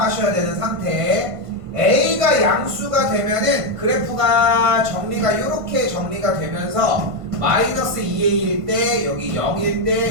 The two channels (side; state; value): left; late; 1.5 ms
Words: 되는 상태. A가 양수가 되면은 그래프가 정리가 이렇게 정리가 되면서 마이너스 2A일 때, 여기 0일